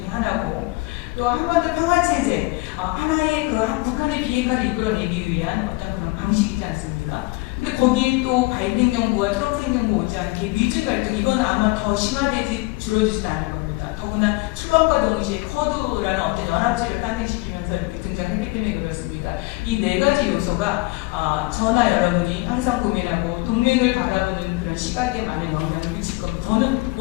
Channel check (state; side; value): quieter; right; 23.3 dB